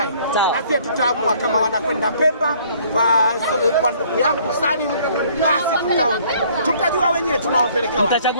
na sisi tutaamua kama wanakwenda Pemba kwa ndugu yangu Salim, basi tutaona, tutajua wenyewe tunawapeleka wapi,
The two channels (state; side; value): inverted; both; correlation -0.59